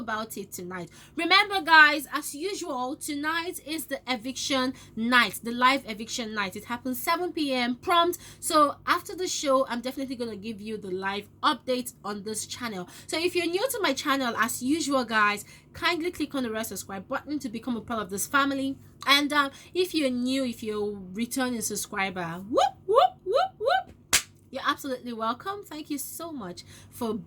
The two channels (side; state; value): both; identical; correlation 1.00